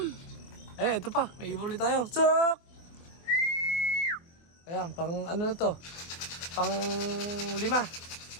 Ito pa. May ibon ulit tayo. Sok! Ayan. Pang ano to. Pang 5.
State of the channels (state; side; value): late; right; 24 ms